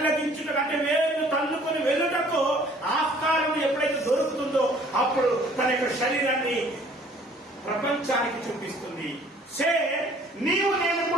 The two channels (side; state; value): both; normal; correlation 0.56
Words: అంటే వేళ్ళు తన్నుకొని వెళ్ళుటకు ఆస్కారం ఎప్పుడైతే దొరుకుతుందో అప్పుడు తన యొక్క శరీరాన్ని ప్రపంచానికి చూపిస్తుంది. నీవు నేను